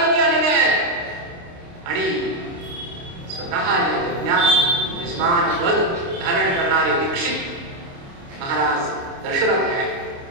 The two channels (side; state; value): left; late; 29 ms